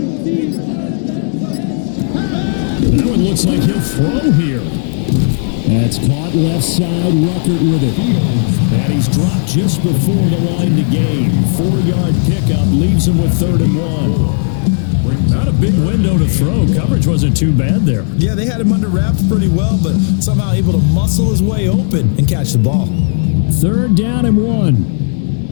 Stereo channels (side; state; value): right; silent; 68 dB below the other